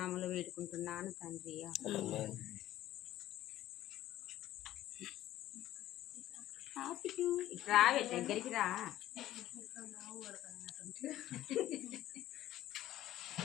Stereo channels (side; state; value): right; quieter; 13.9 dB